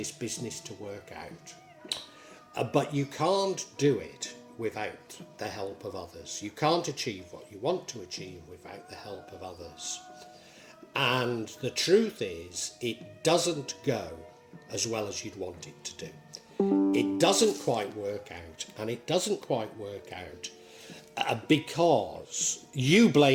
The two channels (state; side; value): identical; both; correlation 1.00